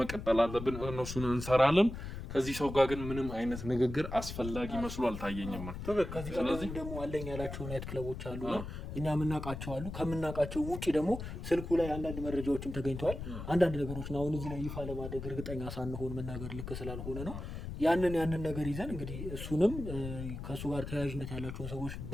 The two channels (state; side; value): noise; left; rumble, 8 dB below the sound